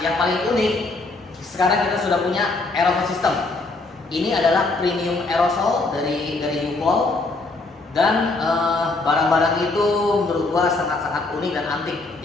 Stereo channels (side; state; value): right; quieter; 3.4 dB